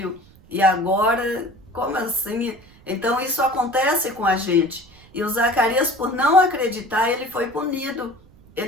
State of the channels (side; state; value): right; noise; rumble, 26 dB below the sound